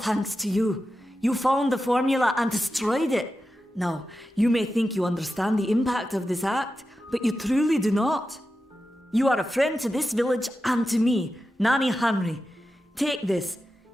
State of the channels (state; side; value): normal; both; correlation 0.91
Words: to you. You found the formula and destroyed it. Now, you may think you understand the impact of this act, but you truly do not. You are a friend to this village and to me, Nanny Henry. Take this.